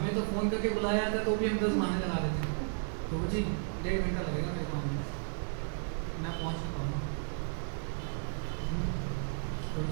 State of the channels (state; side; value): silent; left; digital silence